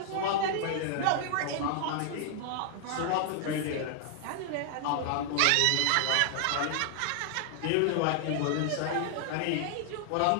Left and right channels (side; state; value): both; different; correlation 0.00